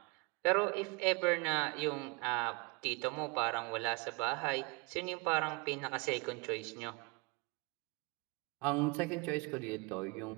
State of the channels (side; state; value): left; quieter; 29.5 dB